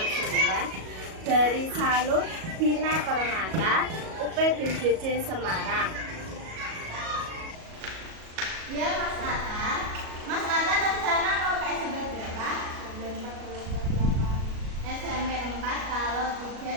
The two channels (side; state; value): left; late; 37 ms